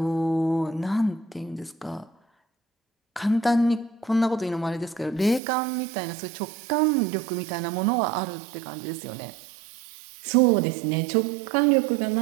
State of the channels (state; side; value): drops out; left; at 5.4 s